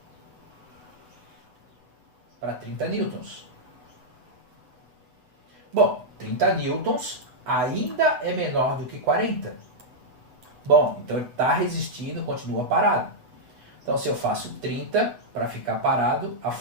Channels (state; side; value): late; left; 8.5 ms